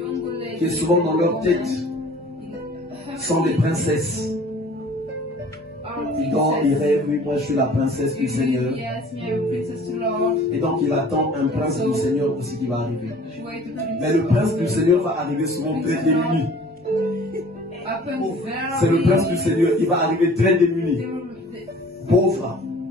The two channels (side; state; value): both; normal; correlation 0.49